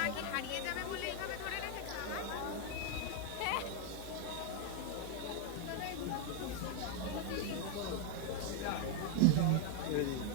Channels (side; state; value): both; different; correlation 0.01